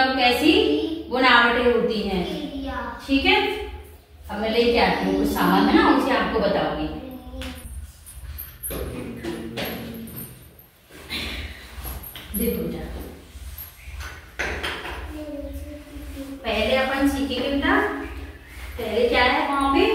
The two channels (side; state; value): both; identical; correlation 1.00